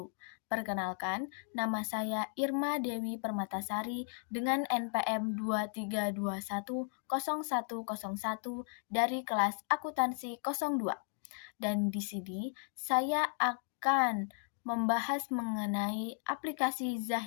Perkenalkan, nama saya Irma Dewi Permatasari dengan NPM 23210101 dari kelas akuntansi 02. Dan di sini saya akan membahas mengenai aplikasi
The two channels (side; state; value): right; silent; 54 dB below the other